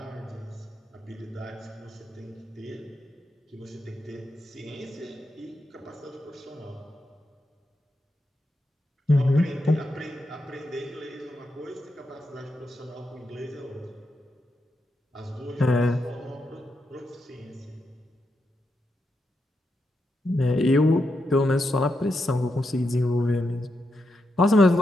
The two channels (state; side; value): normal; both; correlation 0.84